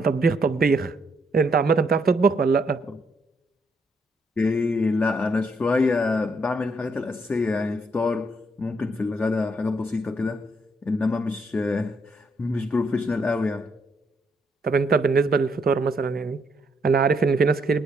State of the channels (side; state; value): both; normal; correlation 0.74